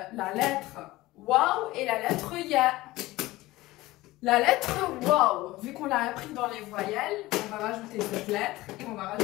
lettre Waouh et la lettre Ya. La lettre Waouh, vu qu'on l'a appris dans les voyelles, on va rajouter cette lettre et on va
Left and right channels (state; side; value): quieter; right; 18.6 dB